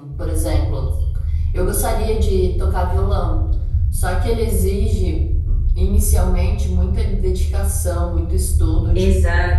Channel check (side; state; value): both; identical; correlation 1.00